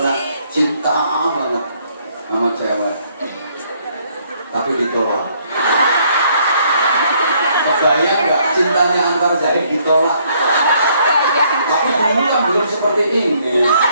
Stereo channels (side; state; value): both; inverted; correlation -0.67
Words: cinta banget sama cewek, tapi ditolak. Kebayang nggak cintanya antar jahit ditolak? Tapi dulu kan belum seperti ini.